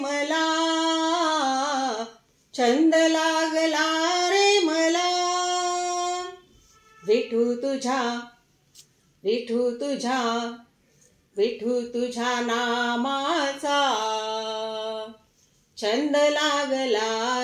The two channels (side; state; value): both; identical; correlation 1.00